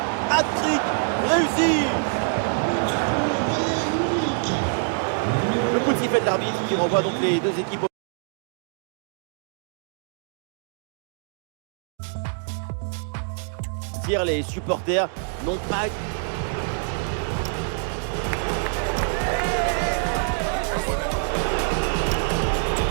Hat-trick réussi. Le coup de sifflet de l'arbitre qui renvoie donc les deux équipes. Les supporters n'ont pas...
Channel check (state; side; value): silent; left; digital silence